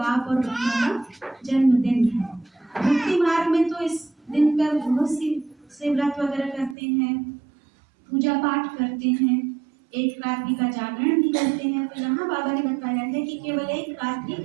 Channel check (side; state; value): left; drops out; at 6.8 s